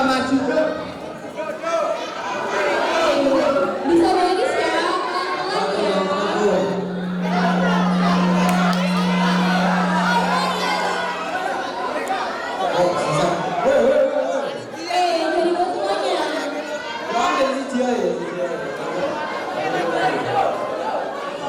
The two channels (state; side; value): identical; both; correlation 1.00